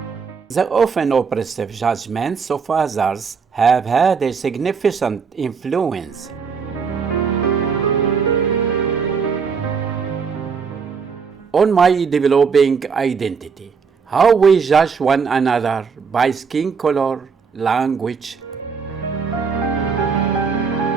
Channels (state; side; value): quieter; left; 5.7 dB